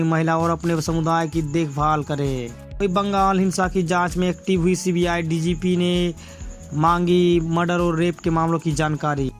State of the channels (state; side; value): identical; both; correlation 1.00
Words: महिला और अपने समुदाय की देखभाल करे। बंगाल हिंसा की जांच में एक्टिव हुई CBI DGP ने मांगी मर्डर और रेप के मामलों की जानकारी।